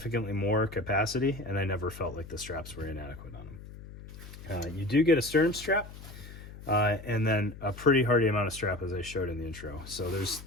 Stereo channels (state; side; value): noise; left; hum, 15 dB below the sound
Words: more capacity, and I never felt like the straps were inadequate on them. You do get a sternum strap, and then a pretty hardy amount of strap, as I showed in the intro. So